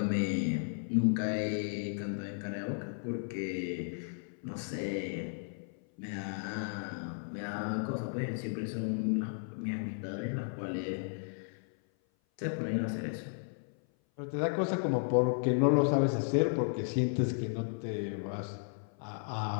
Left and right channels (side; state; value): right; silent; 55 dB below the other